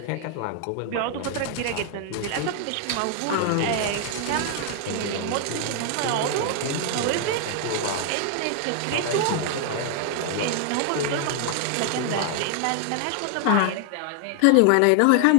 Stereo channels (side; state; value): both; different; correlation 0.00